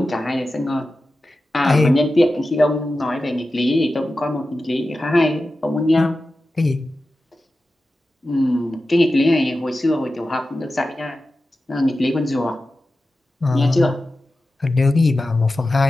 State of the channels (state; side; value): normal; both; correlation 0.93